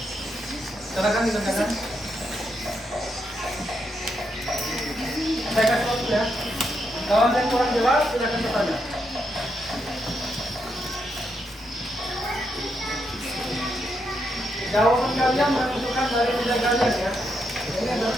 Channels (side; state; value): both; normal; correlation 0.81